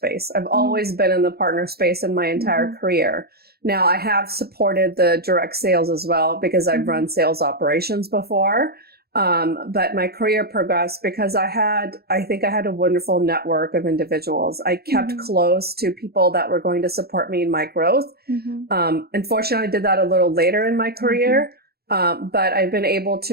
I've always been in the partner space in my entire career. Now I have supported the direct sales as well because I've run sales operations before. But my career progressed because I think I had a wonderful network of individuals. I kept close to people that were going to support me in my growth. Unfortunately, I did that a little later in my career. But I've been able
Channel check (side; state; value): left; late; 0.46 ms